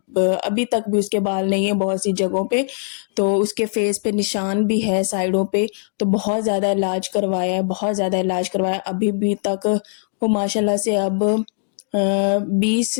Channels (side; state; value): right; silent; digital silence